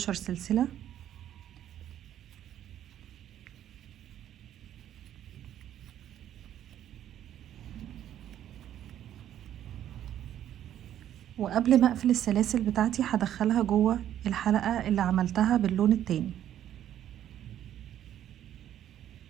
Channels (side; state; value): left; quieter; 11.1 dB